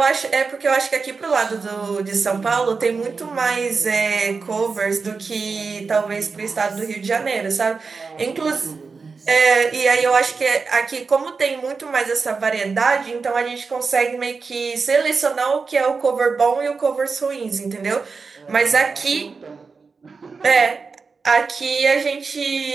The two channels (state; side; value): quieter; left; 4.7 dB